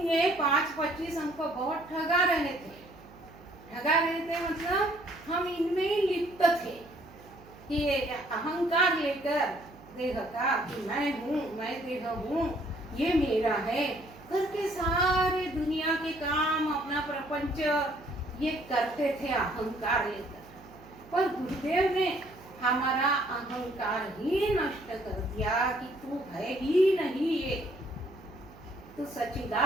ये 5-25 हमको बहुत ठगा रहे थे। ठगा रहे थे मतलब हम इनमें ही लिप्त थे कि ये अहंकार लेकर देह का कि मैं हूँ, मैं देह हूँ, ये मेरा है करके सारे दुनिया के काम, अपना प्रपंच ये करते थे अहंकार लेकर। पर गुरुदेव ने हमारा अहंकार ही नष्ट कर दिया कि तू है ही नहीं, ये तू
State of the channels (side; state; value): right; noise; hum, 22 dB below the sound